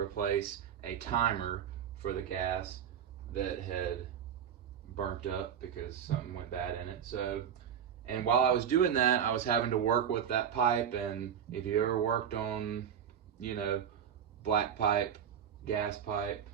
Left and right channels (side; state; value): left; quieter; 8.6 dB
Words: a timer for the gas that had burnt up because something went bad in it. And while I was doing that, I was having to work with that pipe. And if you ever worked on, black pipe, gas pipe,